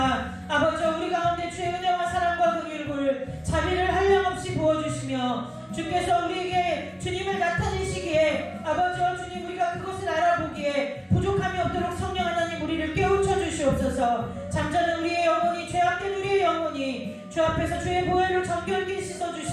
아버지 우리 가운데 주의 은혜와 사랑과 긍휼을 자비를 한량없이 부어주시며 주께서 우리에게 주님을 나타내시기에 아버지 주님 우리가 그것을 알아보기에 부족함이 없도록 성령 하나님 우리를 깨우쳐 주시옵소서. 잠자는 우리의 영혼이 죄악된 우리의 영혼이 주 앞에서 주의 보혈로 정결케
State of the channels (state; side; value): identical; both; correlation 1.00